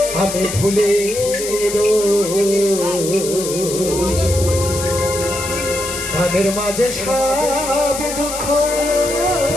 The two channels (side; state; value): left; noise; hiss, 7 dB below the sound